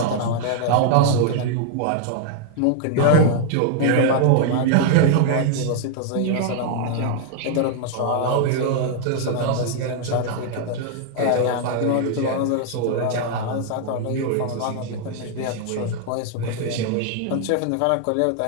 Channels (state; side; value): different; both; correlation 0.00